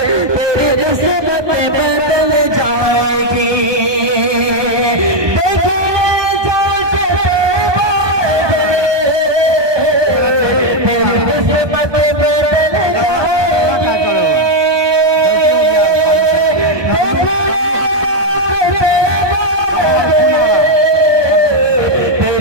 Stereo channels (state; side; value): late; left; 1.2 ms